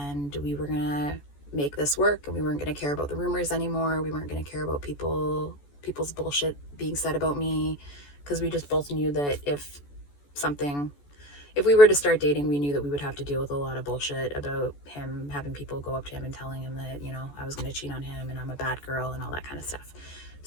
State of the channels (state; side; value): late; right; 14 ms